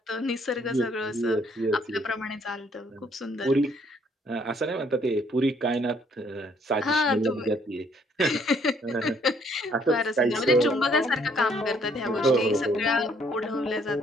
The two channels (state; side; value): normal; both; correlation 0.65